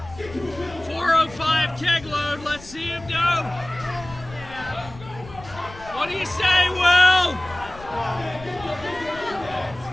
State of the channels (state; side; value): noise; left; rumble, 18 dB below the sound